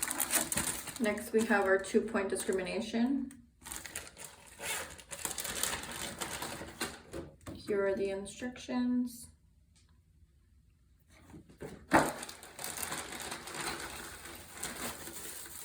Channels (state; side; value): identical; both; correlation 1.00